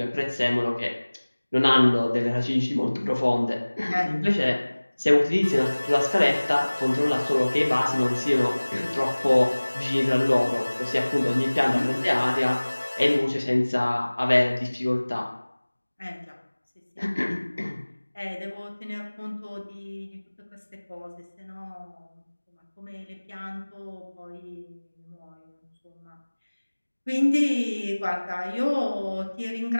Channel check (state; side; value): inverted; both; correlation -1.00